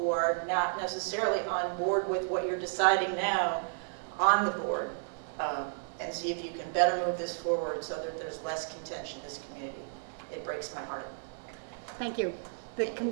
are not necessarily on board with what you're deciding now on the board, and see if you can better move this forward so that there's less contention in this community. It breaks my heart. Thank you.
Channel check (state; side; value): silent; left; digital silence